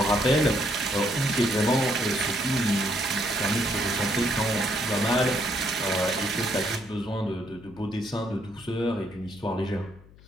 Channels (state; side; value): noise; left; hum, 23 dB below the sound